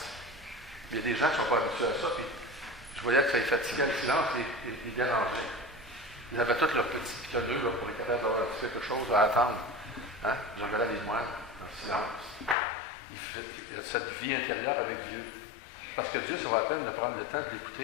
Il y a des gens qui ne sont pas habitués à ça, puis je voyais que ça les fatiguait le silence, les dérangeait. Ils avaient tous leurs petits pitonneux là, pour être capables d'avoir quelque chose à attendre. Hein? Je regardais les moines en silence. Il y a cette vie intérieure avec Dieu. Parce que Dieu, ça vaut la peine de prendre le temps de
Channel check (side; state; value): right; drops out; at 12.6 s